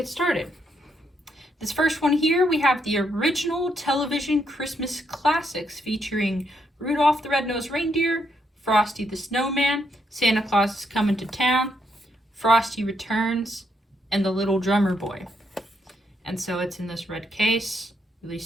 started. This first one here, we have the original television Christmas classics featuring Rudolph the Red-Nosed Reindeer, Frosty the Snowman, Santa Claus is Coming to Town, Frosty Returns, and The Little Drummer Boy. And so it's in this red case,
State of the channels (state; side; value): normal; both; correlation 0.77